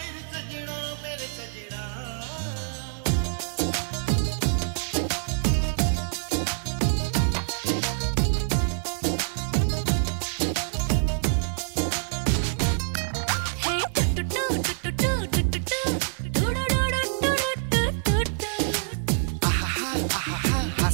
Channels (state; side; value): silent; left; 57 dB below the other